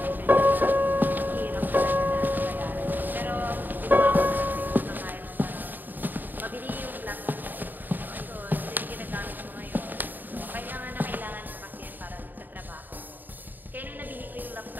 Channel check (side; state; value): left; late; 0.089 ms